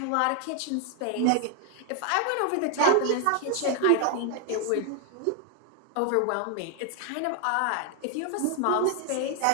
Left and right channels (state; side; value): different; both; correlation 0.00